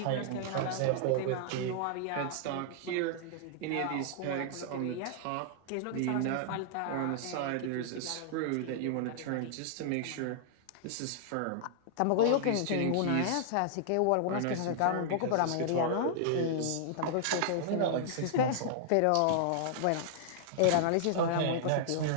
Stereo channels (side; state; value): both; different; correlation -0.01